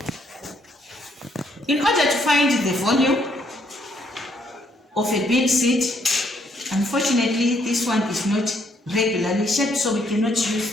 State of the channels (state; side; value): normal; both; correlation 0.70